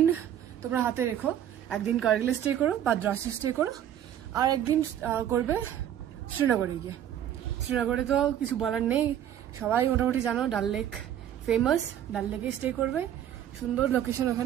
তোমরা হাতে রেখো, একদিন কার্গিলে স্টে করো বা দ্রাসে স্টে করো, আর একদিন করবে শ্রীনগরে গিয়ে। শ্রীনগরে তো কিছু বলার নেই, সবাই মোটামুটি জানো, ডাল লেক ফেমাস। ডাল লেকে স্টে করবে, সুন্দর লোকেশন,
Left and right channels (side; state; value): left; quieter; 10.5 dB